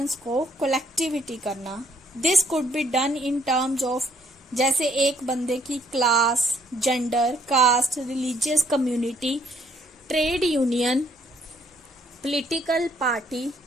को कलेक्टिविटी करना। This could be done in terms of, जैसे एक बंदे की class, gender, caste, religious community, trade union, political party,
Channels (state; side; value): normal; both; correlation 0.67